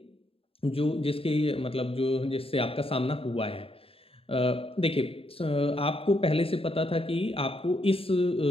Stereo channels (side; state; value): right; late; 0.27 ms